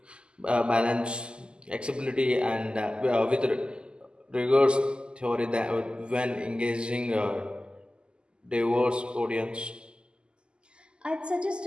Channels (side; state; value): left; late; 0.049 ms